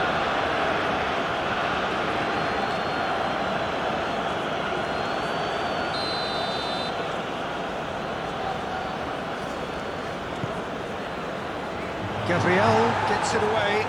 Gabriel gets it away.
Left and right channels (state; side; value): identical; both; correlation 1.00